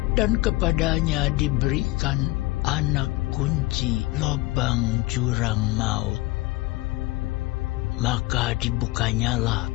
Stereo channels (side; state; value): right; quieter; 20.0 dB